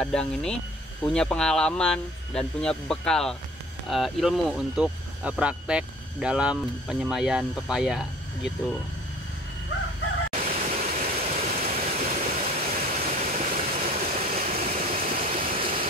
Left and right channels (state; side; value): normal; both; correlation 0.48